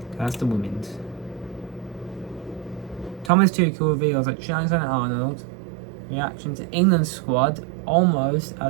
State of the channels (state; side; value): drops out; left; at 3.3 s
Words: that's the women's. Thomas Tuchel reveals that Trent Alexander-Arnold reaction to England squad almost